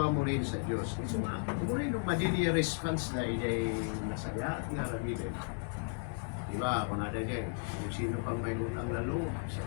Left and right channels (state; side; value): silent; right; 55 dB below the other